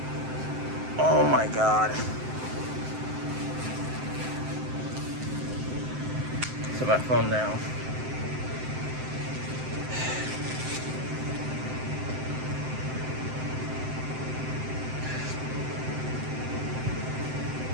Oh my god. Set my phone down.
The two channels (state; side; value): late; left; 7.7 ms